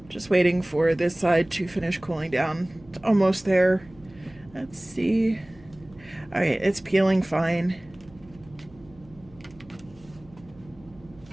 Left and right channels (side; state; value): right; noise; hum, 25 dB below the sound